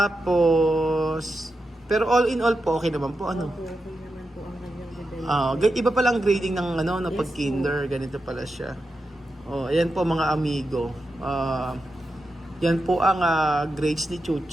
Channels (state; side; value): normal; both; correlation 0.88